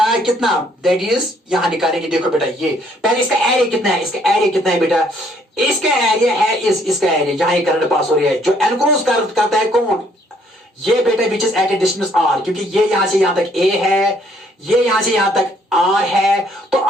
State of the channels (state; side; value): normal; both; correlation 0.65